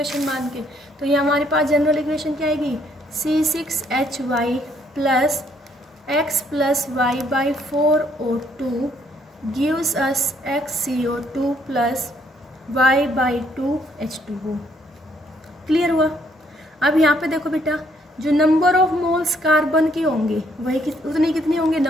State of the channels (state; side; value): normal; both; correlation 0.68